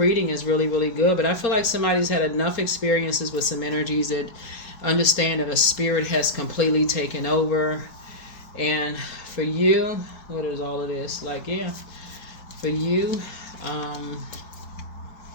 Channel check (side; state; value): right; late; 4.3 ms